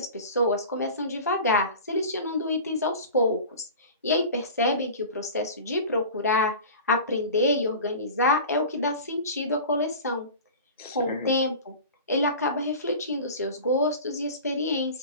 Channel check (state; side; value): inverted; both; correlation -0.36